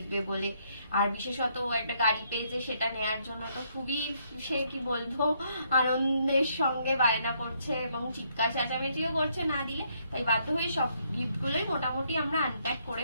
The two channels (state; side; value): inverted; both; correlation -0.72